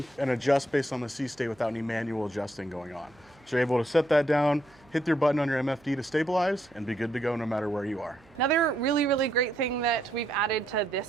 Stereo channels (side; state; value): right; noise; hum, 29 dB below the sound